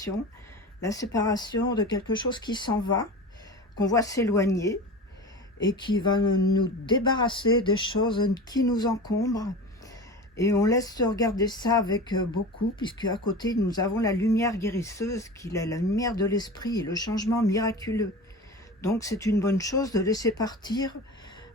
de quelque chose qui s'en va, qu'on voit s'éloigner et qui va nous débarrasser des choses qui nous encombrent. Et on laisse regarder ça avec beaucoup, puisque à côté, nous avons la lumière guérisseuse, qui est la lumière de l'esprit et le changement miraculeux. Donc c'est une bonne chose de laisser partir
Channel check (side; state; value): both; normal; correlation 0.31